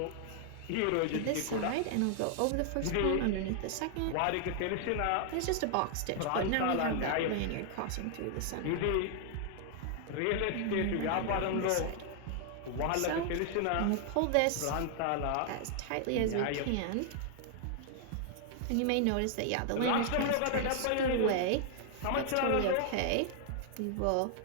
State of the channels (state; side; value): different; both; correlation 0.00